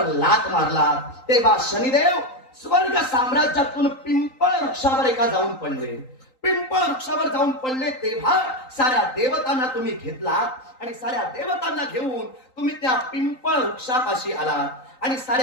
लात मारला. तेव्हा शनिदेव स्वर्ग साम्राज्यातून पिंपळ वृक्षावर एका जाऊन पडले. पिंपळ वृक्षावर जाऊन पडले तेव्हा साऱ्या देवतांना तुम्ही घेतलात आणि साऱ्या देवतांना घेऊन तुम्ही त्या पिंपळ वृक्षापाशी आलात आणि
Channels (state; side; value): late; right; 3.9 ms